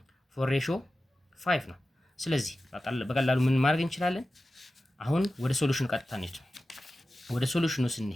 4:5 ነው። ስለዚህ በቀላሉ ምን ማድረግ እንችላለን? አሁን ወደ ሶሉሽኑ ቀጥታ እንሂድ። ወደ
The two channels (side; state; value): both; normal; correlation 0.94